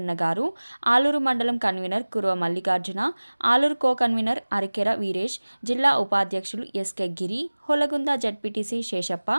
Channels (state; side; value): inverted; both; correlation -1.00